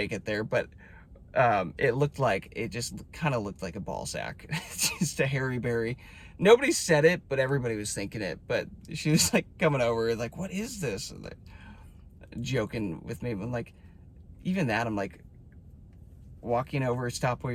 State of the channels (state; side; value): identical; both; correlation 1.00